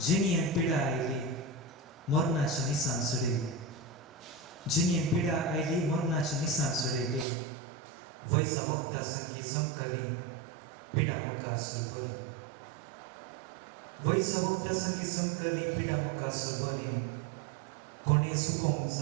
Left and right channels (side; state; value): left; drops out; at 7.2 s